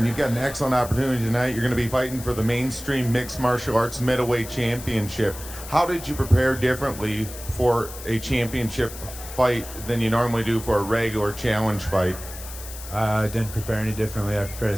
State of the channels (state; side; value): noise; left; hiss, 13 dB below the sound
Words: you've got an excellent opportunity tonight. You're going to be fighting for the mainstream mixed martial arts middleweight championship. How did you prepare differently for a championship fight than you normally do for a regular challenge fight? I didn't prepare any differently. I prepare the